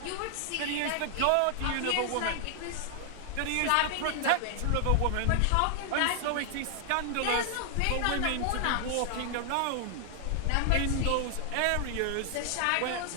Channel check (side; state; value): both; different; correlation 0.00